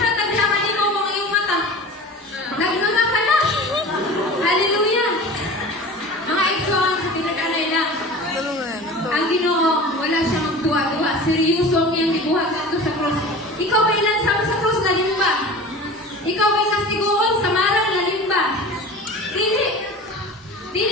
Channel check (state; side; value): normal; both; correlation 0.36